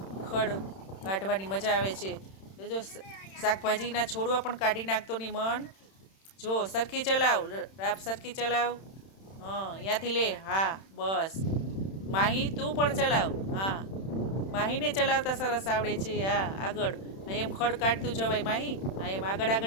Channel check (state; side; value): late; right; 31 ms